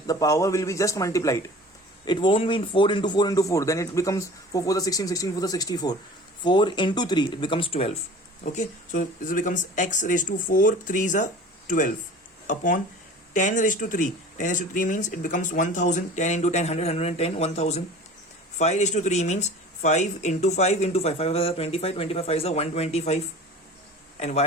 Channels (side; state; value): both; normal; correlation 0.41